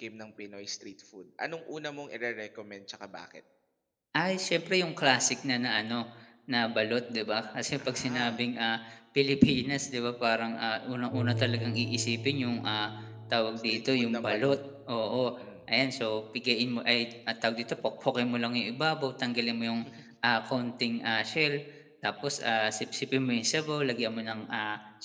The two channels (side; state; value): both; identical; correlation 1.00